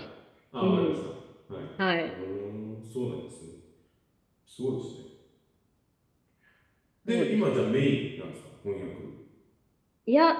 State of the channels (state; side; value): identical; both; correlation 1.00